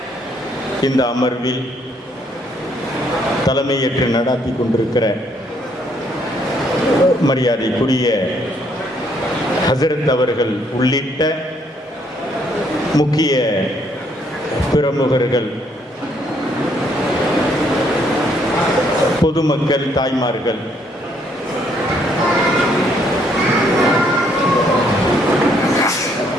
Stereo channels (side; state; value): both; normal; correlation 0.69